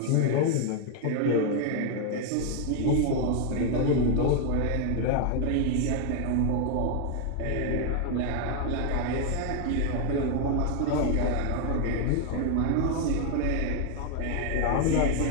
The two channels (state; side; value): different; both; correlation 0.00